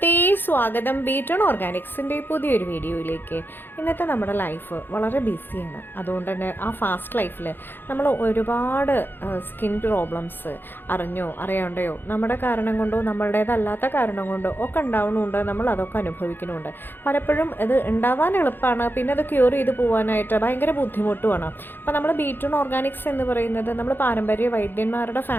സ്വാഗതം ബീറ്റൺ ഓർഗാനിക്സിൻ്റെ പുതിയൊരു വീഡിയോയിലേക്ക്. ഇന്നത്തെ നമ്മുടെ ലൈഫ് വളരെ ബിസിയാണ്. അതുകൊണ്ട് തന്നെ ആ ഫാസ്റ്റ് ലൈഫിൽ നമ്മൾ ഒരുപാട് സ്കിൻ പ്രോബ്ലംസ് അറിഞ്ഞോ അറിയാണ്ടയോ നമ്മുടെ കാരണം കൊണ്ടോ നമ്മളുടേതല്ലാത്ത കാരണം കൊണ്ടോ ഒക്കെ ഉണ്ടാവുന്നുണ്ട്. നമ്മൾ അതൊക്കെ അനുഭവിക്കുന്നുണ്ട്. പലപ്പോഴും ഇത് ഉണ്ടാവാൻ എളുപ്പമാണ്, പിന്നെ അത് ക്യൂർ ചെയ്ത് പോകാനായിട്ട് ഭയങ്കര ബുദ്ധിമുട്ടുമാണ്. അപ്പോൾ നമ്മൾ ബീറ്റൺ ഓർഗാനിക്സ് എന്ന് പറയുന്നത് നമ്മൾ പാരമ്പര്യ വൈദ്യന്മാരുടെ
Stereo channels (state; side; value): late; right; 0.098 ms